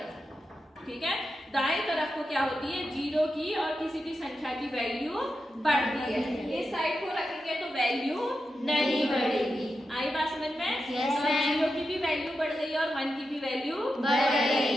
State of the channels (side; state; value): both; normal; correlation 0.89